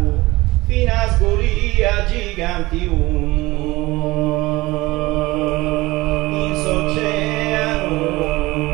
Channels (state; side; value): quieter; left; 20.4 dB